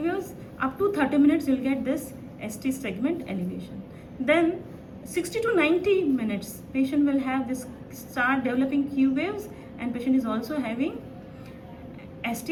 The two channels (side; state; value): both; identical; correlation 1.00